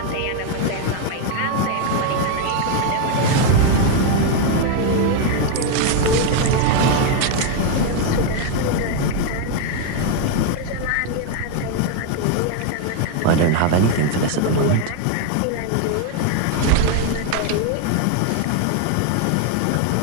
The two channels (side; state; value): both; different; correlation 0.01